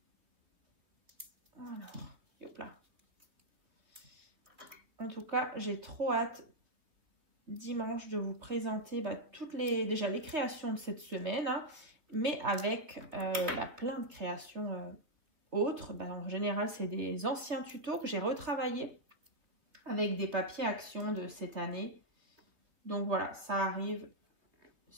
En tout cas, j'ai trop hâte dimanche de vous présenter toutes déjà les créations de cette semaine, hein, mais avec plein de créations autres. En général, c'est des anciens tutos que j'ai retravaillés avec des papiers action de cette année. Donc voilà, ça arrive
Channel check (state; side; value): late; left; 3.3 ms